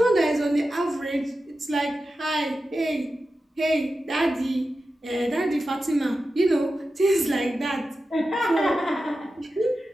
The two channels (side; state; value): both; normal; correlation 0.92